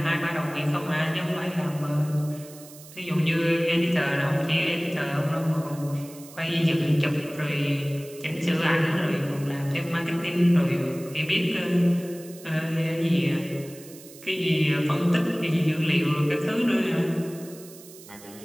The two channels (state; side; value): noise; right; hiss, 19 dB below the sound